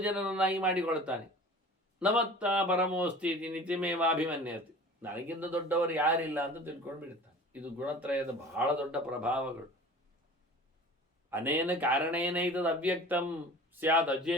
ಜನರನ್ನಾಗಿ ಮಾಡಿಕೊಳ್ತಾನೆ. ನಮತ್ತ ಪರಮೋಸ್ತಿ ನಿತಿಮೇವಾಭಿಮನ್ಯತೆ. ನನಗಿಂತ ದೊಡ್ಡವರು ಯಾರಿಲ್ಲ ಅಂತ ತಿಳ್ಕೊಂಡು ಬಿಡ್ತಾನೆ. ಇದು ಗುಣತ್ರಯದ ಬಹಳ ದೊಡ್ಡ ಪ್ರಭಾವಗಳು. ಅನೇನ ಕಾರಣೇನ ಇದದು ಅವ್ಯಕ್ತಂ ಸ್ಯಾದ್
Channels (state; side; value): normal; both; correlation 0.41